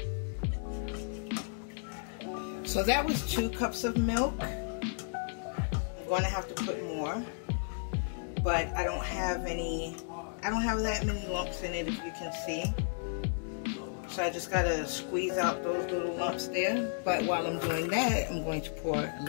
So that was 2 cups of milk. I'm going to have to put more. but I don't have that many lumps in it, if you can see. So I just gotta squeeze out those little lumps there. But while I'm doing that, I'm going to pour a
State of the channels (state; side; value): silent; right; digital silence